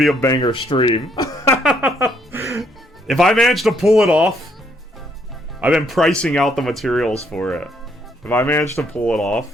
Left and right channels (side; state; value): both; normal; correlation 0.70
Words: a banger stream. If I manage to pull it off, I've been pricing out the materials for it. If I manage to pull it